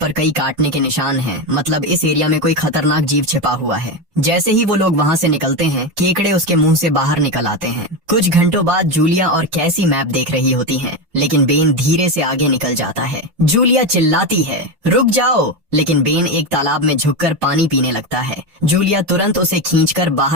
कई काटने के निशान हैं, मतलब इस एरिया में कोई खतरनाक जीव छिपा हुआ है। जैसे ही वो लोग वहाँ से निकलते हैं, केकड़े उसके मुंह से बाहर निकल आते हैं। कुछ घंटों बाद जूलिया और कैसी मैप देख रही होती हैं, लेकिन बेन धीरे से आगे निकल जाता है। जूलिया चिल्लाती है, रुक जाओ, लेकिन बेन एक तालाब में झुककर पानी पीने लगता है। जूलिया तुरंत उसे खींचकर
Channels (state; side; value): late; left; 5.8 ms